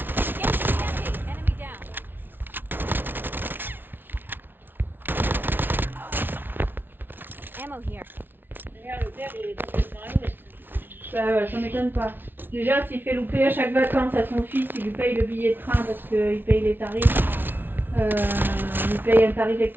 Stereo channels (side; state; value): left; late; 0.098 ms